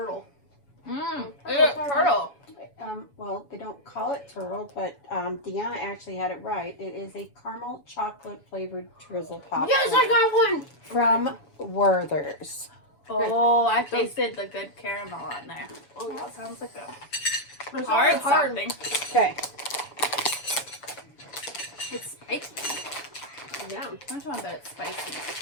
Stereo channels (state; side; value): late; right; 7.0 ms